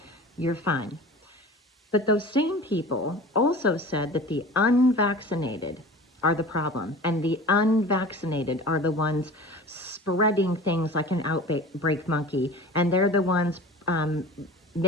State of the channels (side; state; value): both; normal; correlation 0.38